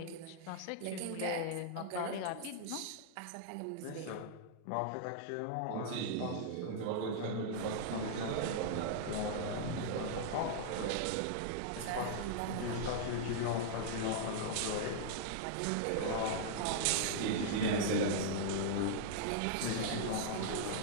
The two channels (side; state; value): both; different; correlation -0.01